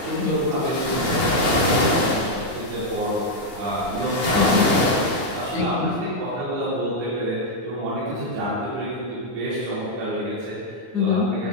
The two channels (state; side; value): late; left; 9.7 ms